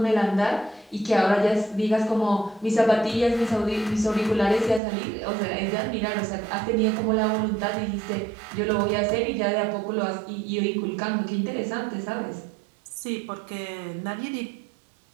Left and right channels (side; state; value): left; drops out; at 4.8 s